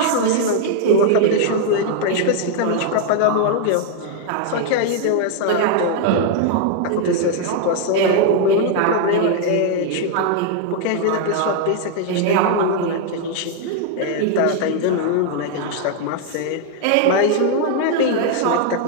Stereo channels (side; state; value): both; different; correlation 0.00